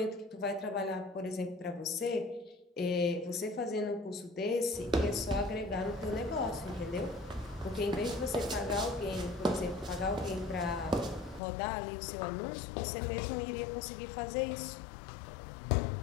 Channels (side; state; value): right; drops out; at 11.4 s